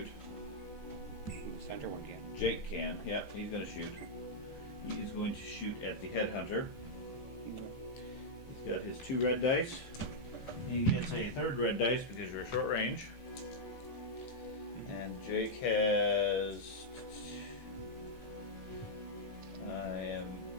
Center one can. Jake can. Yep, he's going to shoot. He is going to shoot at the headhunter. He's got his 2 red dice. He gets a 3rd red dice because you're short range. And Jake has. I am.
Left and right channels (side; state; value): right; late; 15 ms